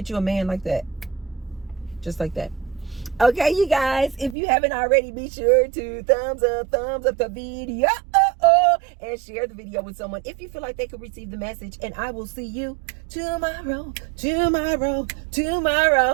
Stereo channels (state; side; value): drops out; left; at 4.4 s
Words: you a man like that. Just like that. Okay, you guys, if you haven't already, be sure to thumbs up the video and share the video with someone if you feel like they could receive the message. And I will see you tomorrow.